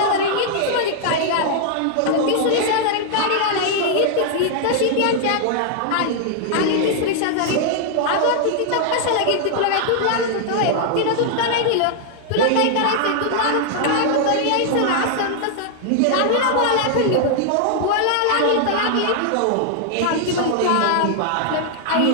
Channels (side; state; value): both; different; correlation -0.01